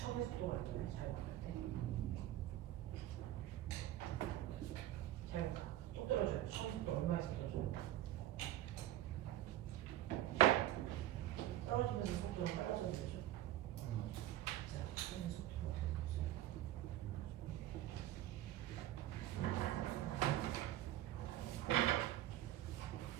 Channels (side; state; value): left; quieter; 13.9 dB